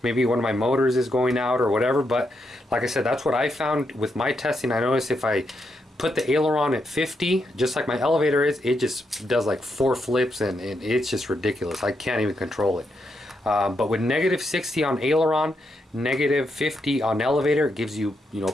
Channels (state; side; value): normal; both; correlation 0.81